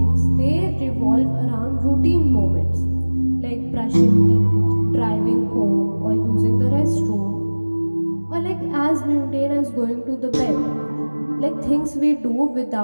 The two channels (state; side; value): inverted; both; correlation -1.00